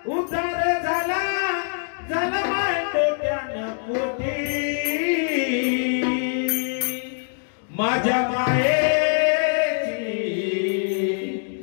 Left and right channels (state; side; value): silent; right; digital silence